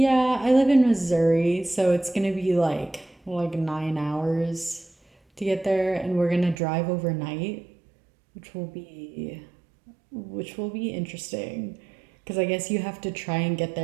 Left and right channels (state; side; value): drops out; left; at 6.6 s